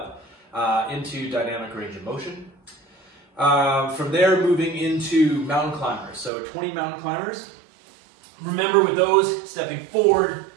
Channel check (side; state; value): left; drops out; at 6.3 s